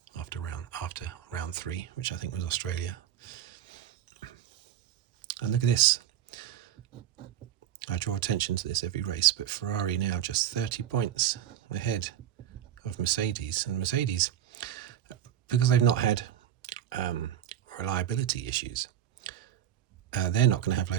after round 3, which I think was Australia. And look at this. I draw attention to this every race, but Ferrari now just 30 points ahead of Mercedes. And Mercedes, because they've not had reliability issues, they're not going to have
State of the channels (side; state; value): left; quieter; 10.6 dB